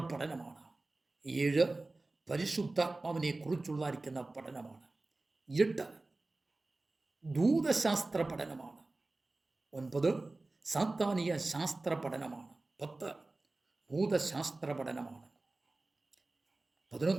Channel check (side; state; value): left; quieter; 3.1 dB